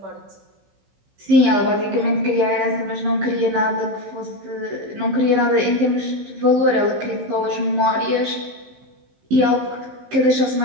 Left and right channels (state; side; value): late; left; 16 ms